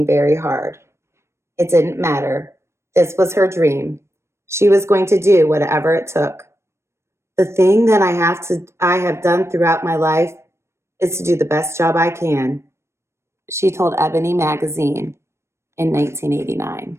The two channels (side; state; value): left; late; 0.13 ms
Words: very hard. It didn't matter. This was her dream. She was going to do whatever it took. The thing that I have done throughout my life is to do the best job I can, she told Ebony magazine in 1989.